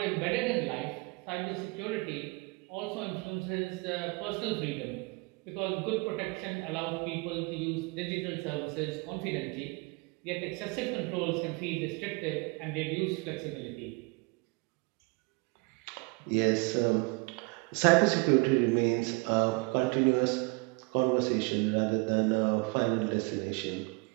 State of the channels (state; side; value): quieter; left; 28.9 dB